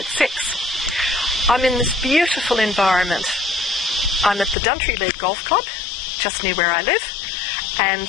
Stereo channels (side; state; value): right; drops out; at 4.5 s